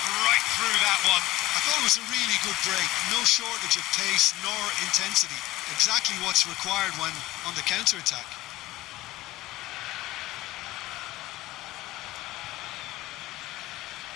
right through that one. I thought it was a really good break. No shortage of pace nor intensity. Exactly what's required when on the counter-attack.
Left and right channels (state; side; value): quieter; right; 17.3 dB